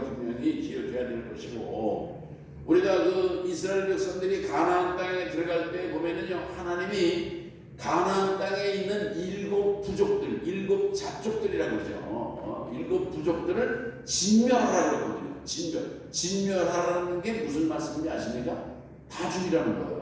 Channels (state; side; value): identical; both; correlation 1.00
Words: 기억해야 될 것이고, 우리가 그 이스라엘 백성들이 가나안 땅에 들어갈 때 보면은요, 하나님이 가나안 땅에 있는 7 부족들, 7 잡족들이라고 그러죠. 7 부족들을 진멸하라고 했거든요. 진멸하라는 게 무슨 말씀인지 아십니까? 다 죽이라는